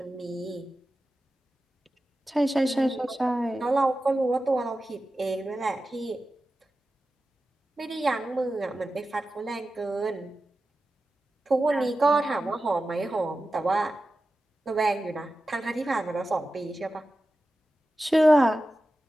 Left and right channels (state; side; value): normal; both; correlation 0.93